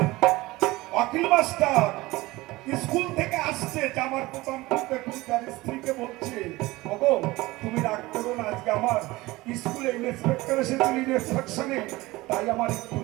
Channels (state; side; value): quieter; left; 20.1 dB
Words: অখিল মাস্টার স্কুল থেকে আসছে, জামার প্রথম তার স্ত্রীকে বলছে ওগো তুমি রাগ করো না, আজকে আমার স্কুলে ইন্সপেক্টর এসেছিল ইন্সপেকশনে, তাই আমার একটু